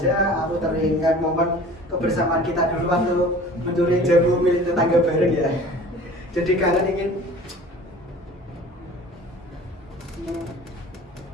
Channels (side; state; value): both; normal; correlation 0.44